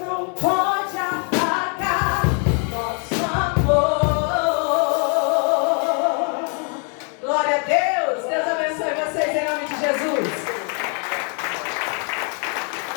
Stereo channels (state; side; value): quieter; right; 39.4 dB